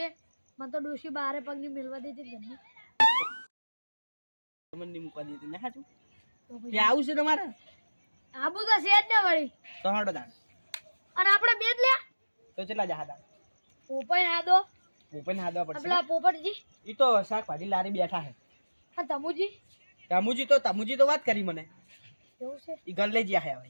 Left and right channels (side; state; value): both; inverted; correlation -1.00